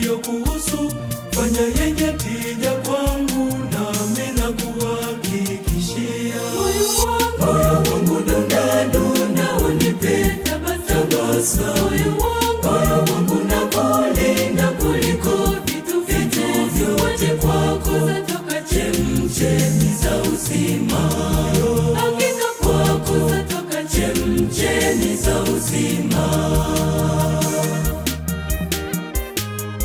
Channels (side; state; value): both; identical; correlation 1.00